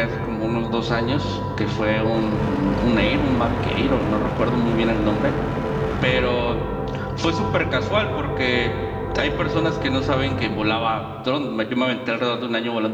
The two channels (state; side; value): identical; both; correlation 1.00